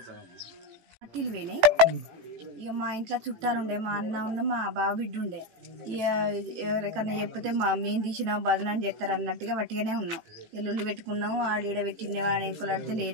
పట్టీలు పోయినాయి. ఇక మా ఇంట్లో చుట్టాలు ఉండే, మా అన్న ఉండే, మా బావ బిడ్డ ఉండే. ఇక ఎవరికన్నా చెప్తే మేము తీసినాం బదనాన్ని చేస్తారు అన్నట్టుగా వట్టిగానే ఉన్నాం. ఎల్లుళ్ళు పెట్టుకున్నాం, ఆడీడ పెట్టిండే అని ఎంకులాడితే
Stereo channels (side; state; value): left; late; 18 ms